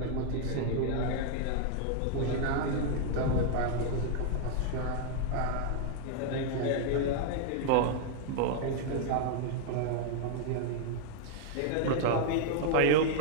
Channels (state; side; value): different; both; correlation 0.00